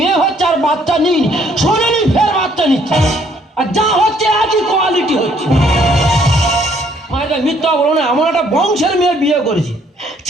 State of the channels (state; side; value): normal; both; correlation 0.65